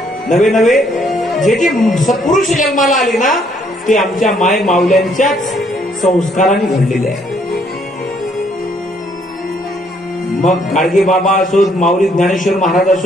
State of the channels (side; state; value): both; normal; correlation 0.68